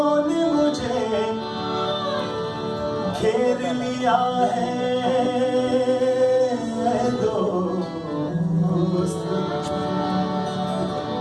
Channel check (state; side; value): identical; both; correlation 1.00